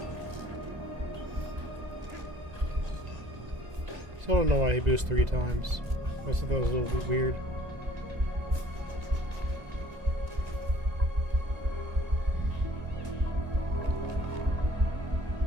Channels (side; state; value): left; late; 2.0 ms